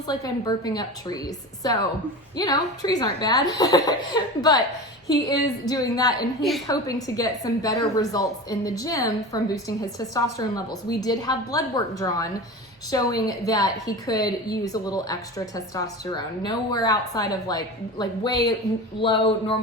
like I'm burping up trees. So, you know, trees aren't bad, but he is doing that, and he's hoping to get some better results in the gym from boosting his testosterone levels. We did have blood work drawn showing that he could use a little extra testosterone, nowhere outside of like way lower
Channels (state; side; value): normal; both; correlation 0.30